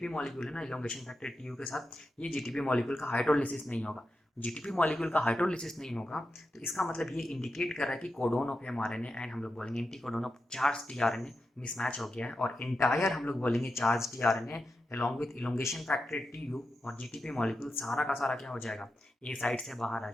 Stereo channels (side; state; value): both; normal; correlation 0.88